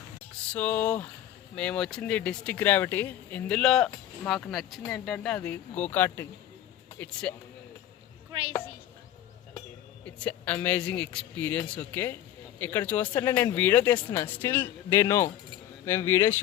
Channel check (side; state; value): right; quieter; 11.9 dB